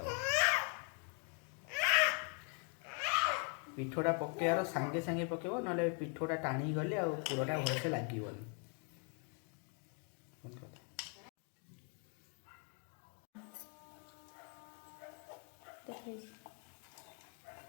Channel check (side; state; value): right; quieter; 39.9 dB